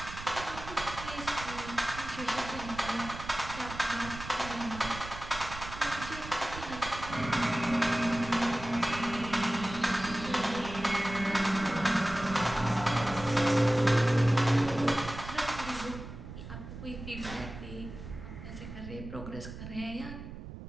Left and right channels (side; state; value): right; noise; rumble, 11 dB below the sound